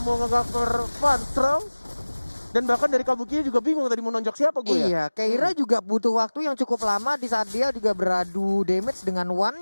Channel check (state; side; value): inverted; both; correlation -1.00